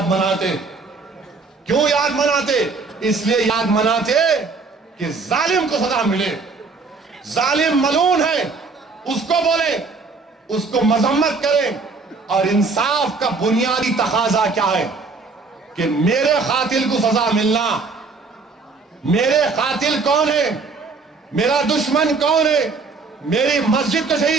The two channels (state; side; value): quieter; left; 4.3 dB